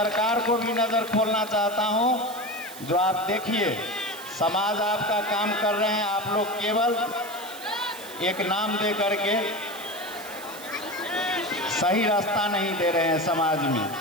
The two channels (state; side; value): noise; right; hiss, 15 dB below the sound